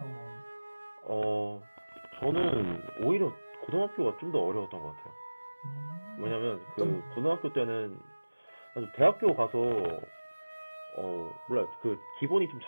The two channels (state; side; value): inverted; both; correlation -1.00